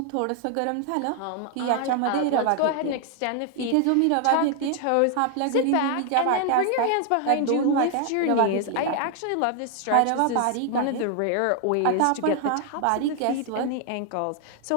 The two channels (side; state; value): both; different; correlation 0.00